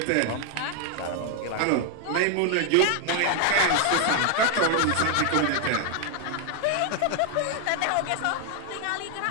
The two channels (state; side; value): different; both; correlation 0.00